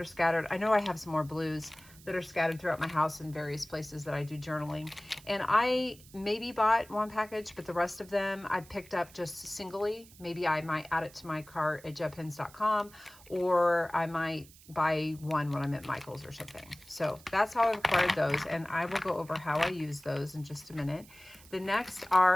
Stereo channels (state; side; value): noise; right; hiss, 22 dB below the sound